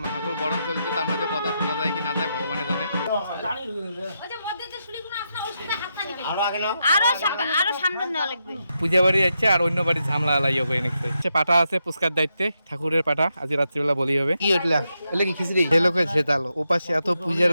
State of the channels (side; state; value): both; inverted; correlation -0.84